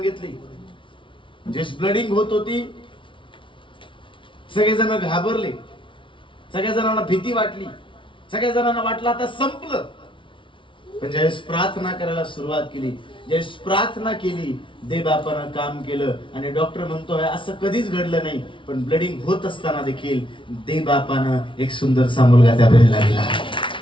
जे ब्लडिंग होत होती, सगळेजण घाबरले, सगळ्या जणांना भीती वाटली, सगळ्या जणांना वाटलं आता संपलं. पण ज्यावेळेस प्रार्थना करायला सुरुवात केली, ज्यावेळेस प्रार्थना केली, देवबापानं काम केलं आणि डॉक्टर म्हणतोय असं कधीच घडलं नाही, पण ब्लडिंग होत असताना देखील देवबापानं एक सुंदरसा मुलगा त्या बहिणीला दिला.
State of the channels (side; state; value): right; late; 0.25 ms